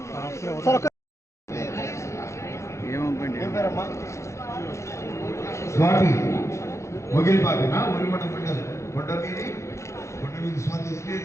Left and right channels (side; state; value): right; late; 0.14 ms